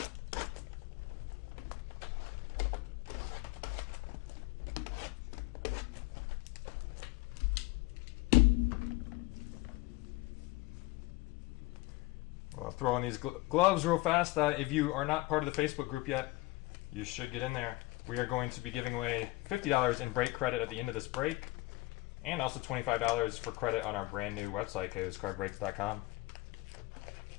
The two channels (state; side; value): quieter; right; 21.2 dB